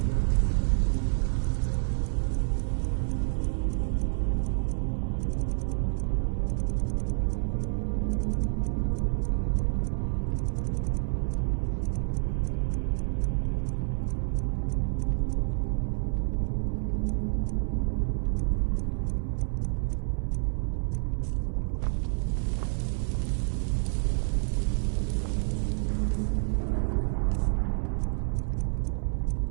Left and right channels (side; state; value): left; silent; 59 dB below the other